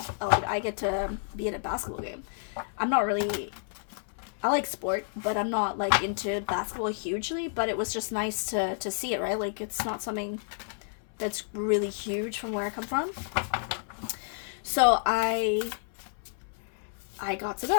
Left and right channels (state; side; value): silent; right; 58 dB below the other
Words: Like, I get to be at a basketball game. I like sport, but I'm not like into basketball hugely, but it was just nice to see it, right? Like, it's not something that's really huge from where I come from. So I got to